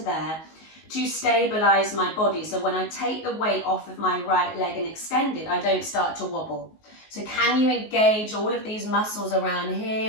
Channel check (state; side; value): late; right; 19 ms